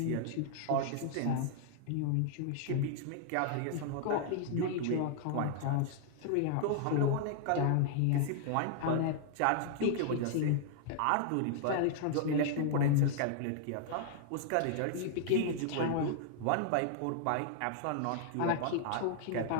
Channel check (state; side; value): different; both; correlation -0.01